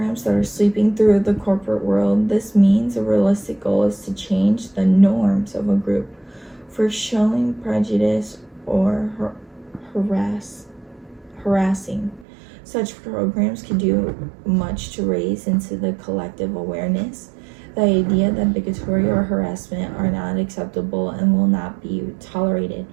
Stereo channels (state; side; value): drops out; left; at 12.2 s